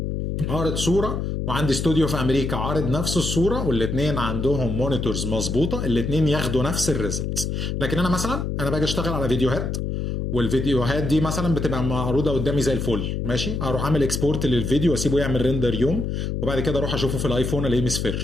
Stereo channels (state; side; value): noise; left; hum, 2 dB below the sound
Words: عارض صوره وعندي استوديو في امريكا عارض نفس الصوره والاثنين عندهم مونيتورز مظبوطه، الاثنين ياخدوا نفس الريزلتس. لكن انا مثلا باجي اشتغل على فيديوهات، والفيديوهات دي مثلا بتبقى معروضه قدامي زي الفل، ماشي، اروح اعمل اكسبورت للفيديو واسيبه يعمل ريندر يوم، وبعد كده اروح اشوفه في الايفون الاقيه